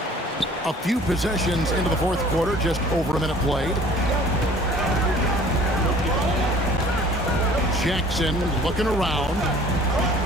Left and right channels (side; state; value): both; normal; correlation 0.50